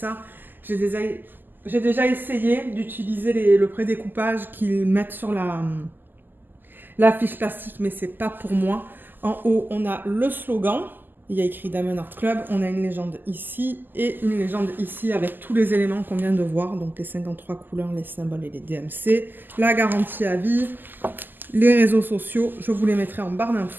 J'ai déjà essayé d'utiliser le pré-découpage qu'ils mettent sur la fiche plastique, mais c'est pas pour moi. En haut, on a le slogan. Il y a écrit Diamond Art Club. On a une légende ici et une légende ici avec tous les éléments qu'on vient de voir. Donc, les 53 couleurs, les symboles et les DMC. La garantie à vie. Les réseaux sociaux. Je vous les mettrai en barre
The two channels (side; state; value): left; late; 0.090 ms